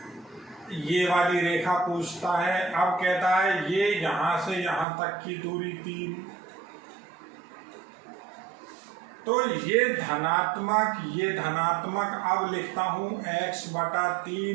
ये वाली रेखा पूछता है, अब कहता है ये यहां से यहां तक की दूरी 3, तो ये धनात्मक अब लिखता हूं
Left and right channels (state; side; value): drops out; left; at 4.9 s